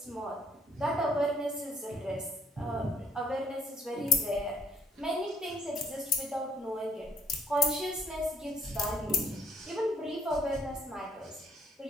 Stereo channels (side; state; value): both; normal; correlation 0.65